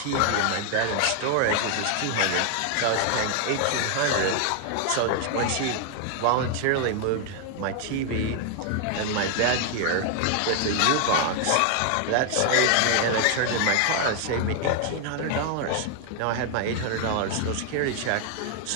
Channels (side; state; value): both; different; correlation 0.00